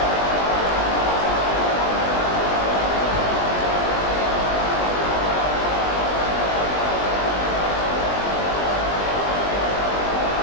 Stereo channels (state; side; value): late; right; 20 ms